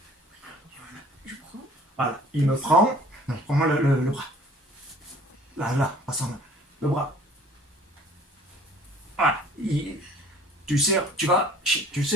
Je prends. Voilà. Il me prend. Non, prends-moi le bras. Là, pas sans main. Le bras. Voilà. Tu serres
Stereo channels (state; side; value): normal; both; correlation 0.52